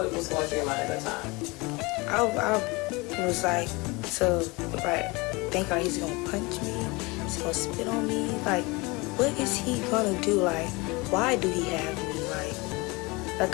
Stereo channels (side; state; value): right; quieter; 25.2 dB